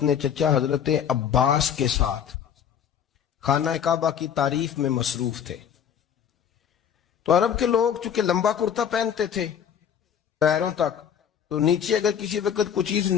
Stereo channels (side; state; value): right; quieter; 8.5 dB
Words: چچا حضرت عباس کے ساتھ خانہ کعبہ کی تعریف میں مصروف تھے. تو عرب کے لوگ چونکہ لمبا کرتا پہنتے تھے پیروں تک، تو نیچے اگر کسی وقت کوئی چیز